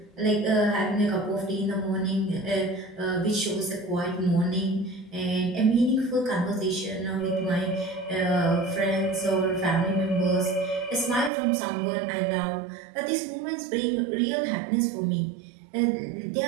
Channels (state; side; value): drops out; left; at 11.3 s